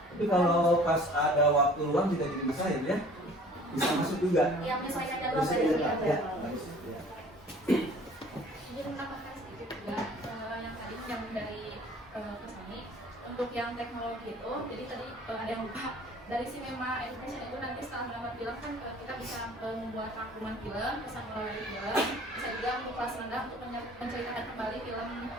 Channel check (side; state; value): both; normal; correlation 0.50